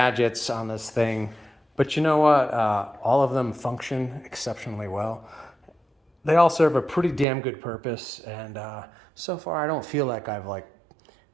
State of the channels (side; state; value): left; drops out; at 7.2 s